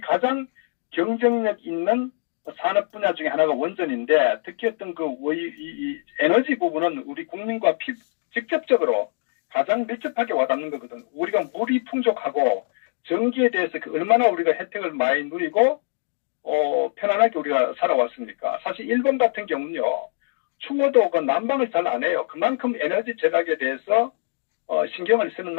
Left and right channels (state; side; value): silent; right; digital silence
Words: 가장 경쟁력 있는 산업 분야 중에 하나가 원전인데 특히 어떤 이 에너지 부분은 우리 국민과 직접적으로 가장 밀접하게 와닿는 거거든. 우리가 물이 풍족하고 전기에 대해서 얼마나 우리가 혜택을 많이 누리고 편안하게 우리가 살아왔습니까? 사실 일본 같은 경우는요. 추워도 그 난방을 잘 안 해요. 그만큼 에너지 절약에 대해서 신경을 쓰는